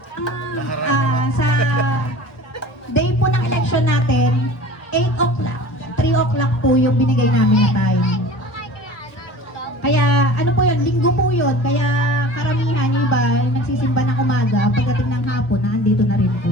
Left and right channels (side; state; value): right; late; 1.3 ms